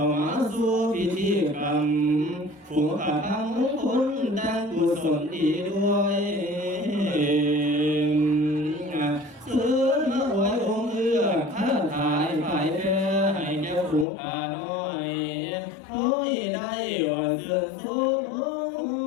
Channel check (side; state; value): right; drops out; at 14.1 s